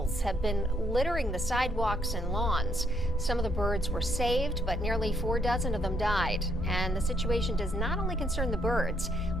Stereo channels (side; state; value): both; normal; correlation 0.72